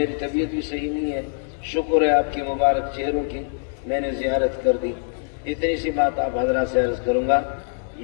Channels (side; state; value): right; silent; 63 dB below the other